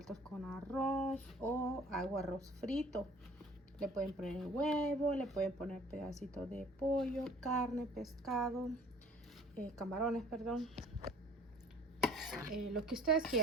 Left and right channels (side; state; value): both; normal; correlation 0.51